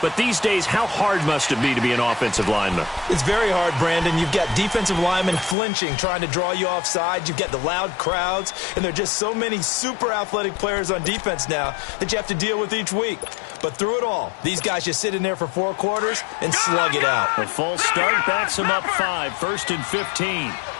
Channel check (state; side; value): drops out; right; at 5.6 s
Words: but these days, how hard must it be to be an offensive lineman? It's very hard, Brandon. You've got defensive linemen flinching, trying to draw you offside. You've got the loud crowds, and there are just so many super athletic players on defense now that you have to deal with each week. But through it all, these guys just sit in there for 4 quarters and slug it out. A false start backs him up 5, 1st and 15.